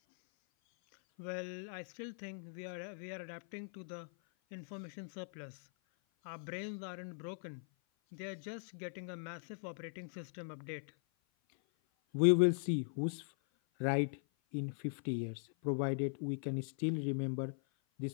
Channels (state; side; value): silent; right; 51 dB below the other